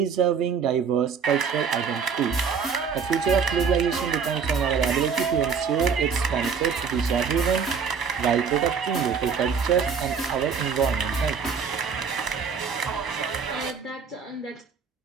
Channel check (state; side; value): quieter; left; 6.2 dB